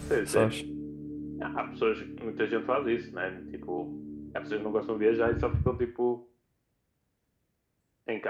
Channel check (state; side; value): identical; both; correlation 1.00